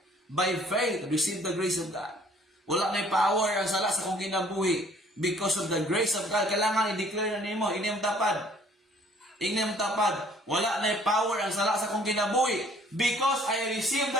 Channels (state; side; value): normal; both; correlation 0.58